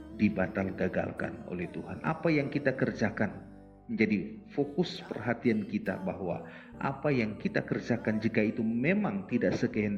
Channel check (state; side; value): identical; both; correlation 1.00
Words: gagalkan oleh Tuhan. Apa yang kita kerjakan menjadi fokus perhatian kita, bahwa apa yang kita kerjakan jika itu memang tidak